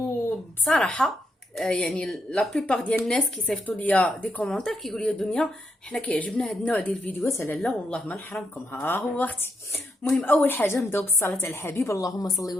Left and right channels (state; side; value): normal; both; correlation 0.80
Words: يعني لا بليبار ديال الناس كيصيفطوا ليا دي كومونتير كيقولوا لي دنيا حنا كيعجبنا هاد النوع ديال الفيديوهات. لا والله ما نحرمكم، ها هو اختي. المهم اول حاجه نبداو بالصلاه على الحبيب، اللهم صل